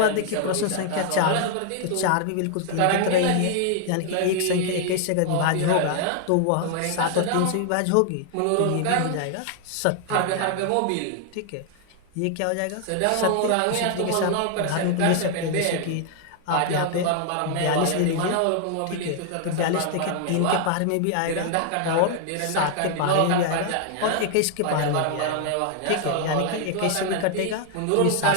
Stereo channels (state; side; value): different; both; correlation 0.00